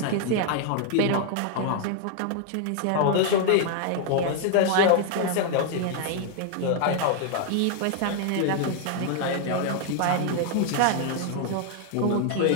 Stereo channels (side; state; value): both; different; correlation 0.00